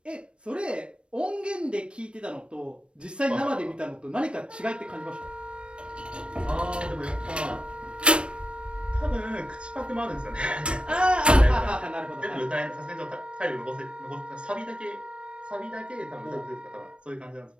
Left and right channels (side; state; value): left; late; 0.058 ms